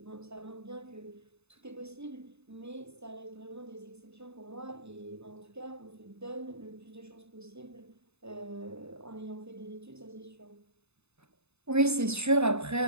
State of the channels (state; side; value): late; left; 0.80 ms